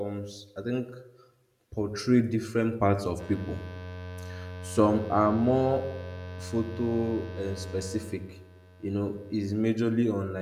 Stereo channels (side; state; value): both; identical; correlation 1.00